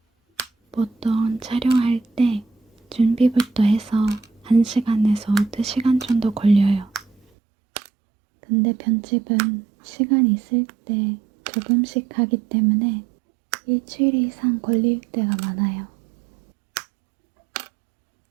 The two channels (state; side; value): drops out; left; at 7.2 s